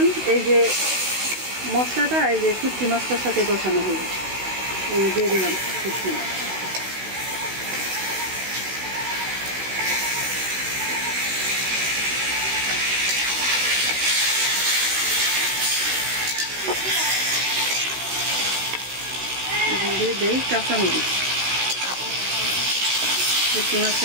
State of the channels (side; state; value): left; late; 16 ms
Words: এই যে মশলাটা এই যে শুটকি মাছটার সাথে কষানো হবে। এই দিয়ে দিলাম শুটকি মাছ। দিয়ে দেই কাঁচামরিচ। শুটকি মাছটা